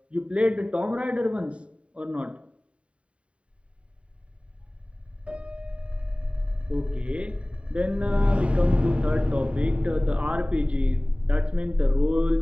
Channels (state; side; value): late; left; 0.061 ms